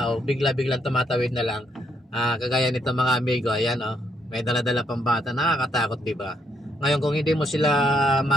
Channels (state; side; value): normal; both; correlation 0.74